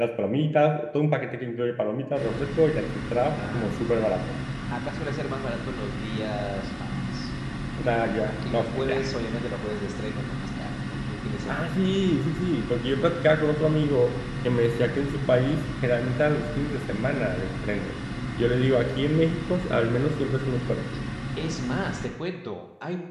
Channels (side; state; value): both; identical; correlation 1.00